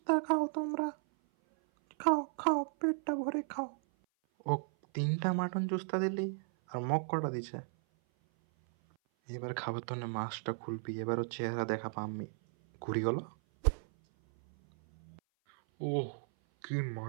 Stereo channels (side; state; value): left; silent; 54 dB below the other